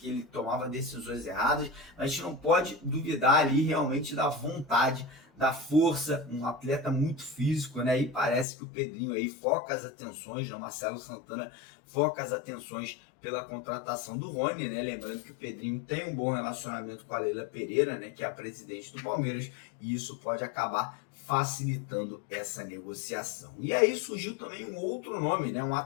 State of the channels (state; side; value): drops out; right; at 8.5 s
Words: ele tomava decisões erradas, mas a gente não pode duvidar ali realmente da vontade, da força, um atleta muito físico, né? E parece que o Pedrinho aí foca as atenções, né? O Marcelo Santana foca as atenções pela contratação do Rony, né? Lembrando que o Pedrinho tem um bom relacionamento com a Leila Pereira, né? Que é a presidente do Palmeiras, e isso pode acabar facilitando essa negociação. E aí surgiu também um outro nome, né? Um